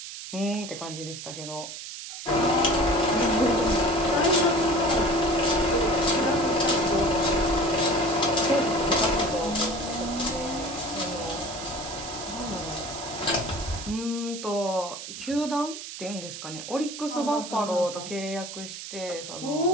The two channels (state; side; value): noise; right; hiss, 10 dB below the sound